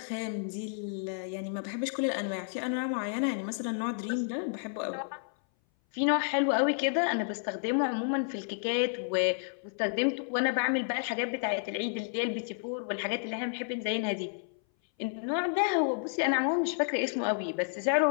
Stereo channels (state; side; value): silent; right; 57 dB below the other